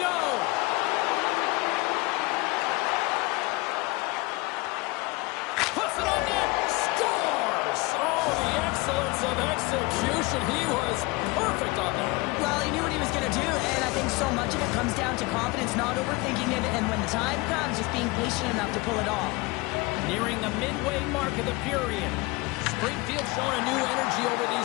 Puts it on net. Scores! Oh, the excellence of execution. He was perfect on that. Well, he knew what he was going to do, and I think so much of it comes down to confidence, not overthinking it, and when the time comes, just being patient enough to pull it off. Nearing the midway mark of the period. Springfield showing a new energy over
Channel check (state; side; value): quieter; right; 23.6 dB